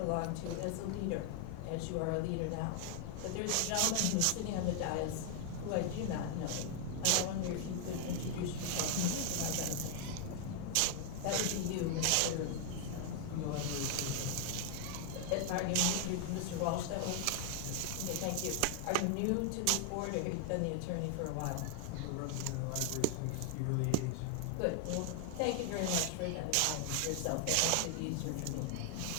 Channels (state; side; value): different; both; correlation 0.00